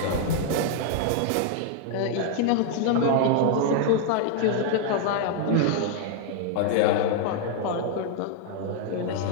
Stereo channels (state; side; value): different; both; correlation 0.00